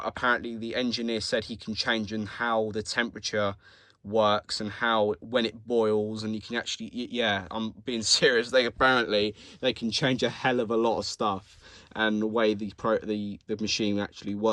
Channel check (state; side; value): identical; both; correlation 1.00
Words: apparently the engineer said he can change in how the temperature works and how, when it boils, and you can actually, yeah, I'm being serious, apparently they can change a hell of a lot of stuff, and the way the machine actually